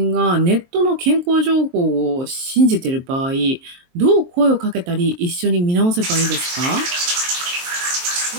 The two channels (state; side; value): late; left; 23 ms